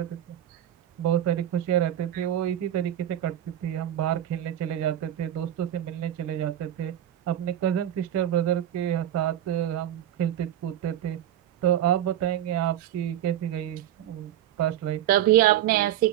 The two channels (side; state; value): left; quieter; 11.7 dB